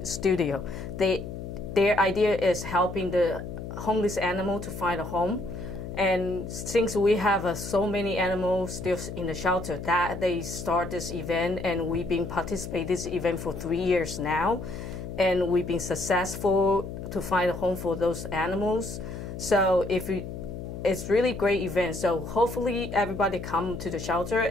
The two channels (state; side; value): noise; left; hum, 8 dB below the sound